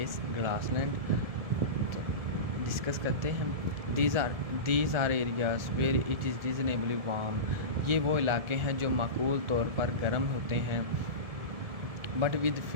grassland. Discuss کرتے ہیں. These are areas where it is reasonably warm. یہ وہ علاقے ہیں جو معقول طور پر گرم ہوتے ہیں. But with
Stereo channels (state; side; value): late; left; 1.7 ms